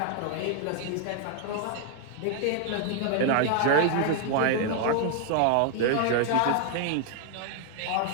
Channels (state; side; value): different; both; correlation 0.00